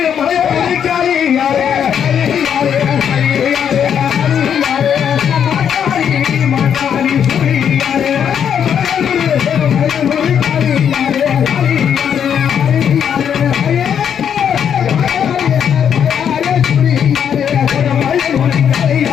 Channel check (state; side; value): quieter; right; 8.3 dB